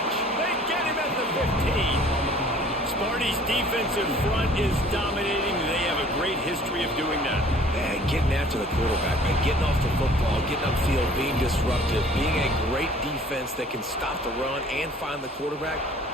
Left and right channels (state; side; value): normal; both; correlation 0.52